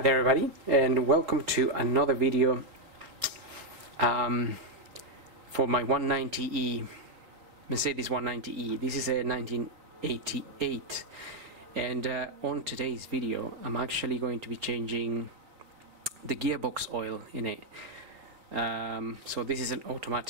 everybody, and welcome to another video for my 190e Mercedes 190e. This is a 1988, and on today's video I'm actually going to be changing the gearbox oil in it. So this is an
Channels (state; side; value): late; left; 4.1 ms